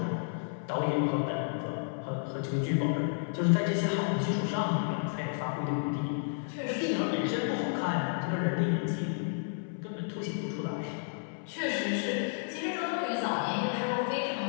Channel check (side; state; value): right; silent; 57 dB below the other